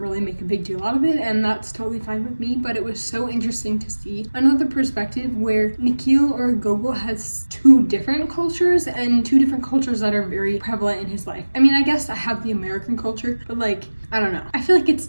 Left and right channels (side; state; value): both; inverted; correlation -1.00